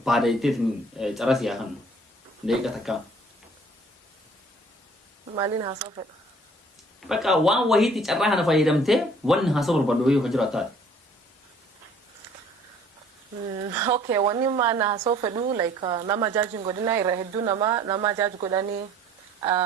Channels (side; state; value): both; normal; correlation 0.54